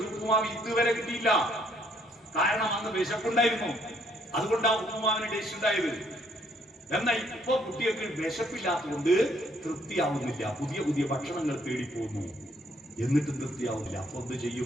ഉപ്പുമാവ് ഇതുവരെ കിട്ടിയില്ല. കാരണം അന്ന് വിശപ്പുണ്ടായിരുന്നു, അതുകൊണ്ടാണ് ഉപ്പുമാവിന് ടേസ്റ്റ് ഉണ്ടായത്. എന്നാൽ ഇപ്പൊ കുട്ടികൾക്ക് വിശപ്പില്ലാത്തതുകൊണ്ട് തൃപ്തിയാവുന്നില്ല. പുതിയ പുതിയ ഭക്ഷണങ്ങൾ തേടിപ്പോകുന്നു, എന്നിട്ടും തൃപ്തിയാവുന്നില്ല. അപ്പൊ എന്ത്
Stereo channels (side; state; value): both; normal; correlation 0.67